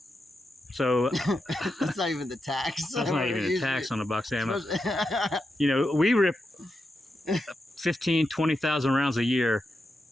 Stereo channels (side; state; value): both; normal; correlation 0.87